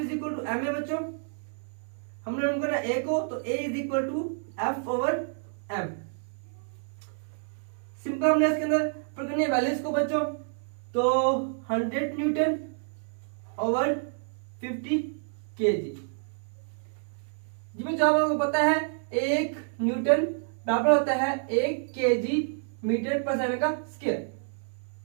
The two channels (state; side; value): silent; left; digital silence